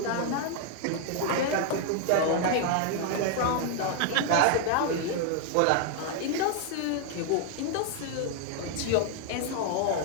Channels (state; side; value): different; both; correlation 0.00